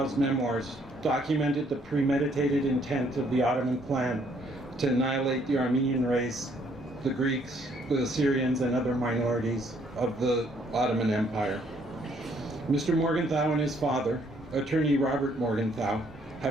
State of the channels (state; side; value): normal; both; correlation 0.66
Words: memoirs documented the premeditated intent of the Ottoman plan to annihilate the Armenian race, the Greeks, the Assyrians, and other minorities of the Ottoman Empire. Mr. Morgenthau and his father, attorney Robert Morgenthau,